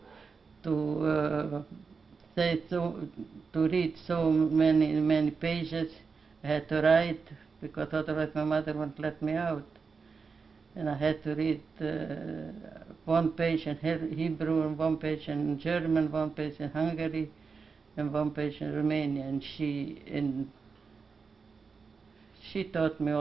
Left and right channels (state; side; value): quieter; left; 5.1 dB